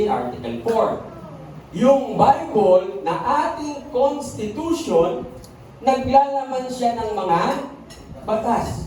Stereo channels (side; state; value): both; identical; correlation 1.00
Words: Article 4. Yung Bible na ating Constitution, naglalaman siya ng mga